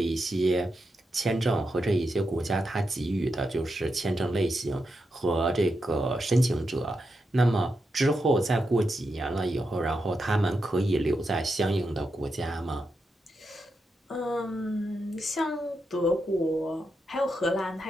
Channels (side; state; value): both; normal; correlation 0.86